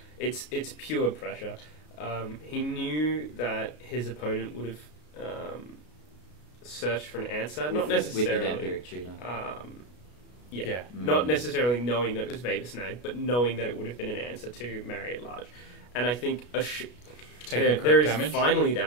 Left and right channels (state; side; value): late; right; 33 ms